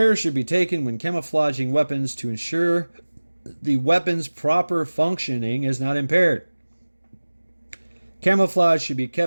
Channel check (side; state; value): both; inverted; correlation -1.00